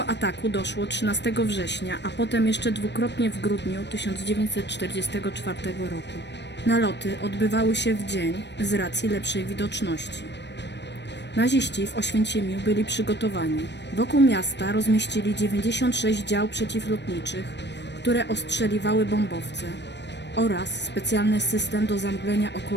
ataku doszło 13 września, a potem jeszcze dwukrotnie w grudniu 1944 roku. Naloty odbywały się w dzień z racji lepszej widoczności. Naziści w Oświęcimiu byli przygotowani. Wokół miasta rozmieścili 96 dział przeciwlotniczych, które ostrzeliwały bombowce oraz specjalny system do zamglenia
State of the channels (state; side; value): late; right; 0.50 ms